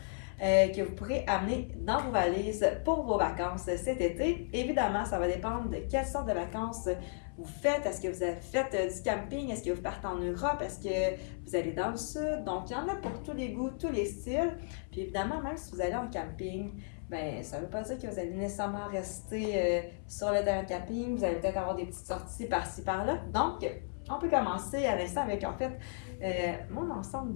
que vous pourrez amener dans vos valises pour vos vacances cet été. Évidemment, ça va dépendre de quelle sorte de vacances vous faites. Est-ce que vous avez fait du camping? Est-ce que vous partez en Europe? Est-ce que vous allez dans le sud? Donc, il y en a pour tous les goûts, tous les styles. Puis évidemment, même si vous allez en camping, ben, ça ne veut pas dire que vous allez nécessairement rester sur le terrain de camping. Vous allez peut-être avoir des petites sorties par-ci, par-là. Donc, on peut commencer à l'instant avec, en fait, mon ensemble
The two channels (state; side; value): silent; right; 55 dB below the other